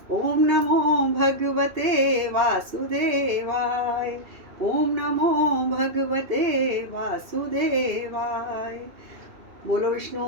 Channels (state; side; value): late; left; 2.7 ms